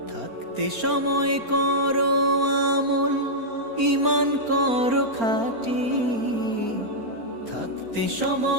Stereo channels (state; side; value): late; left; 4.3 ms